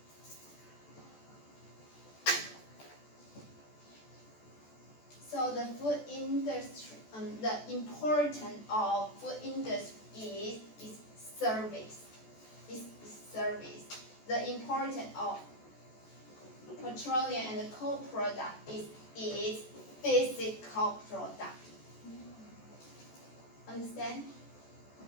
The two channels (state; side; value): late; right; 14 ms